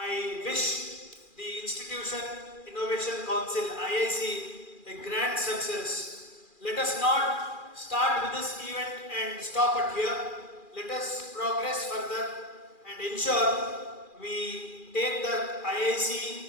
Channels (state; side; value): late; right; 2.4 ms